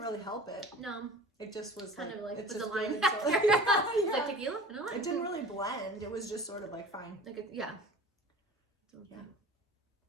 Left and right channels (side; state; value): both; normal; correlation 0.41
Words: really help it. No. It just was Kind like, of like it's with the just lime good, factor. so- It's like Yeah. tequila? No, It didn't really blend. It was just sort of like fine. Like it, yeah. So, Yeah.